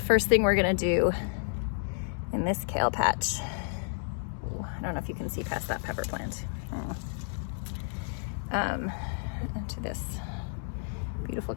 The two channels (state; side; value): silent; right; digital silence